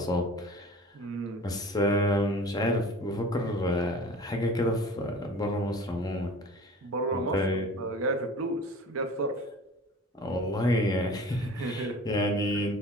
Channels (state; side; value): normal; both; correlation 0.42